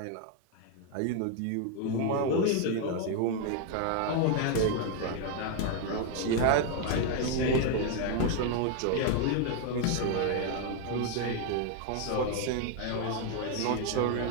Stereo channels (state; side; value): different; both; correlation 0.01